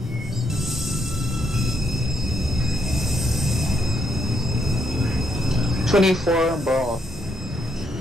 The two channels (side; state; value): both; normal; correlation 0.77